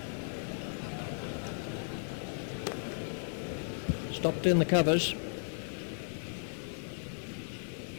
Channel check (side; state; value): right; silent; digital silence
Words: Stopped in the covers.